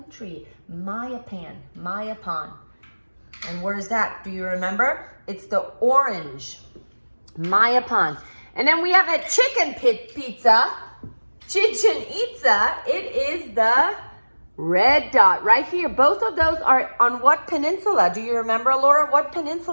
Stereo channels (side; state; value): both; inverted; correlation -1.00